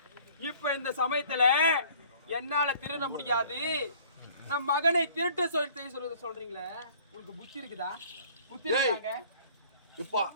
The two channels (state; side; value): inverted; both; correlation -0.53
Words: இப்ப இந்த சமயத்துல என்னால திருட முடியாது. நம் மகனை திருட்டு சொல்றீங்களே, உங்களுக்கு புத்தி இருக்குதா? புத்தி இருக்காங்க. இப்ப